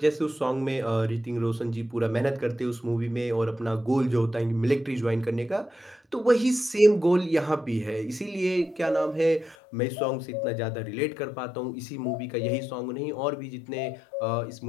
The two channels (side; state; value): right; drops out; at 9.6 s